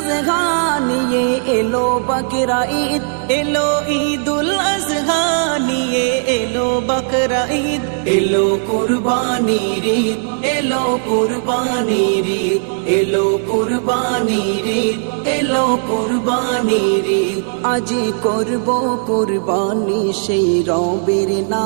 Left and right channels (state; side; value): silent; left; digital silence